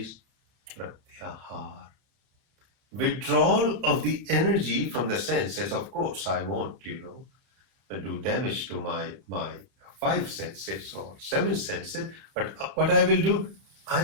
Pratyahara. Withdrawal of the energy from the senses. Of course, I won't, do damage to my five senses or seven senses, but what I will do,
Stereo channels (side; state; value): left; late; 31 ms